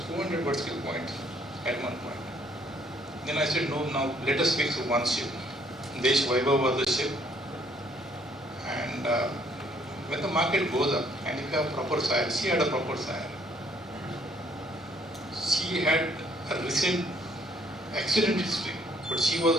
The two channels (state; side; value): normal; both; correlation 0.64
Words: 400 vertical points at one point. Then I said, no, now let us fix one ship. Desh Vaibhav was the ship. And when the market goes up, and if you have proper sire, she had a proper sire. She had a recent accident history, but she was